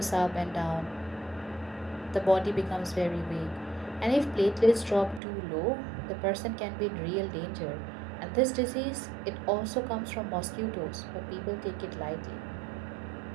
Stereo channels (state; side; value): drops out; left; at 5.2 s